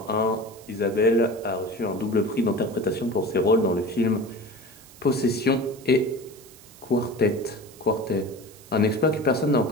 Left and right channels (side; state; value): right; noise; hiss, 22 dB below the sound